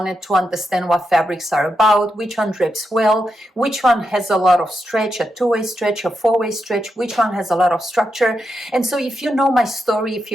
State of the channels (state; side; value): normal; both; correlation 0.85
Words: to understand what fabrics are about, which one drapes well, which one has a lot of stretch, a two-way stretch, a four-way stretch, which one has a lot of structure. And so if you know my story, if